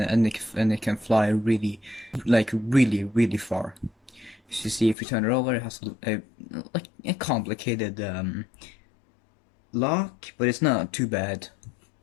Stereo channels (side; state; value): right; drops out; at 5.0 s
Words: it can fly really far. As you see, if you turn it over, it has like a complicated lock, but it's not too bad.